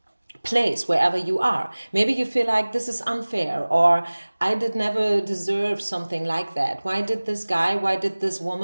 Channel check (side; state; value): both; inverted; correlation -1.00